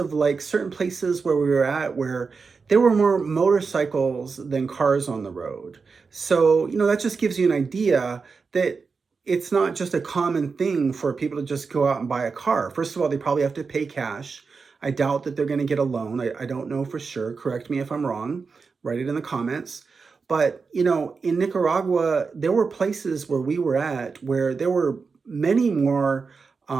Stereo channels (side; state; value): left; quieter; 4.9 dB